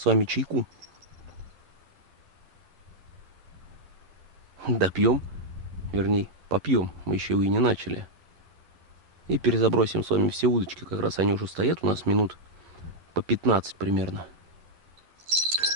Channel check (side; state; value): left; late; 11 ms